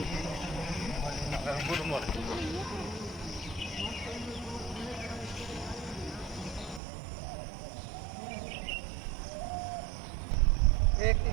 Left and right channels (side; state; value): left; drops out; at 6.8 s